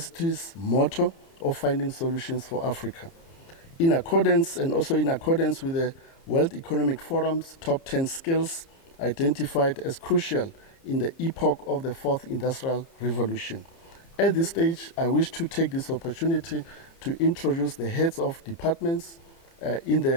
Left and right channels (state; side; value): late; right; 30 ms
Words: motto of finding solutions for Africa. In accordance with the World Economic Forum's top 10 skills identified as crucial in the epoch of the Fourth Industrial Revolution. At this stage, I wish to take this opportunity to introduce the heads of departments in